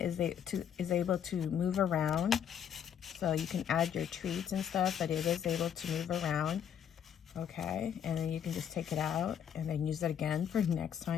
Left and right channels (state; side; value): quieter; right; 8.8 dB